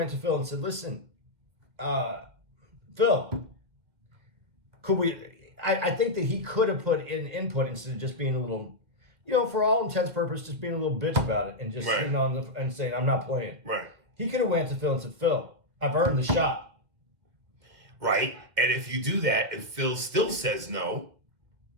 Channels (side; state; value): left; late; 2.2 ms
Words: to Phil and said, listen, Phil, could we... I think that he could have put in input instead of just being a little, for all intents and purposes, just being a little bitch about it and just right, sitting on and saying, I'm not playing. Right. He could have went to Phil and said, Phil, I've earned the shot. Right. And if you do that and Phil still says no.